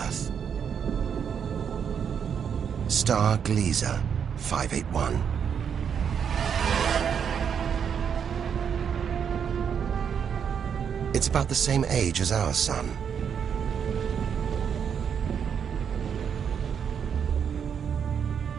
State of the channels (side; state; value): left; quieter; 7.5 dB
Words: Star Gliese 581. It's about the same age as our sun.